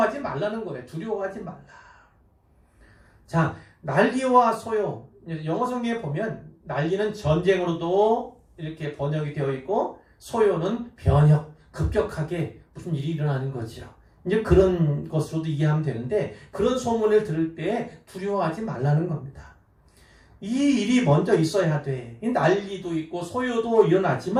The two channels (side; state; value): both; identical; correlation 1.00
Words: 말라는 거예요. 두려워하지 말라. 자, 난리와 소요. 영어 성경에 보면 난리는 전쟁으로도 이렇게 번역이 되어 있고 소요는 변혁, 급격하게 무슨 일이 일어나는 거죠. 이제 그런 것으로도 이해하면 되는데 그런 소문을 들을 때 두려워하지 말라는 겁니다. 이 일이 먼저 있어야 돼. 난리도 있고 소요도